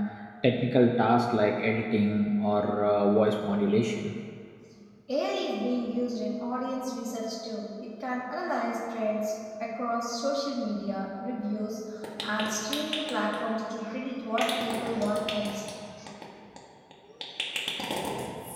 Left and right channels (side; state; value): both; identical; correlation 1.00